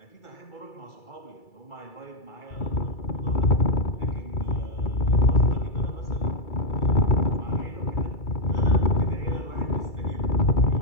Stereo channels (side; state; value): right; late; 2.3 ms